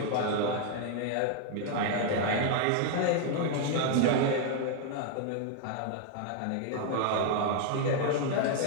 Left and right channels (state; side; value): different; both; correlation 0.00